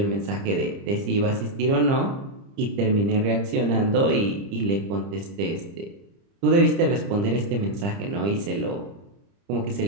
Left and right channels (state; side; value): late; left; 30 ms